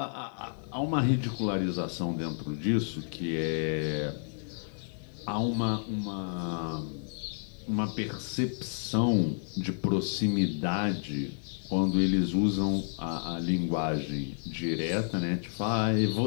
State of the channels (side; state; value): right; silent; digital silence